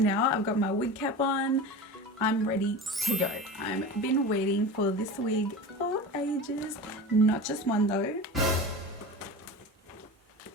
now. I've got my wig cap on. I'm ready to go. I've been waiting for this wig for ages. Not just one though.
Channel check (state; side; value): normal; both; correlation 0.31